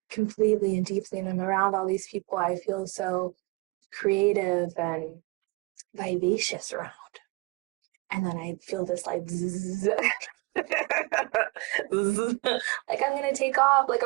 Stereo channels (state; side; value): quieter; left; 25.3 dB